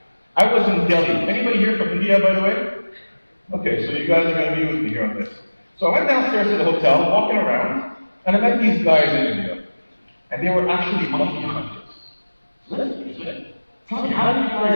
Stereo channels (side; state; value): both; inverted; correlation -1.00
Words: I was in Delhi. Anybody here from India, by the way? Okay, so you guys are going to be with me here on this. So I went downstairs to the hotel, walking around, and I met these guys in India. And they were actually monkey hunters. So let's be it. Tell me, how do you